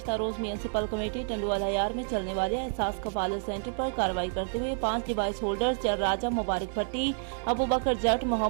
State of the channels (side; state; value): left; silent; digital silence